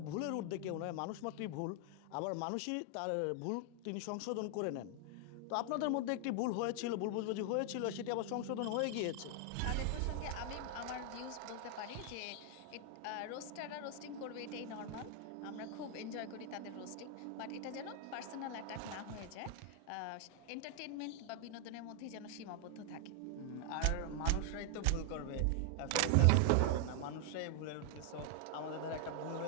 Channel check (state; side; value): different; both; correlation 0.00